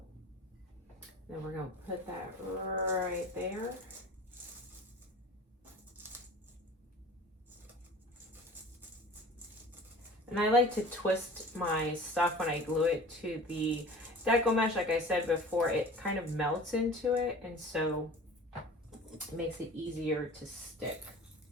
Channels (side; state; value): both; normal; correlation 0.42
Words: Then we're gonna put that right there. And I like to twist my stuff when I glue it to the deco mesh, like I said before, it kind of melts into it, and so it makes it easier to stick.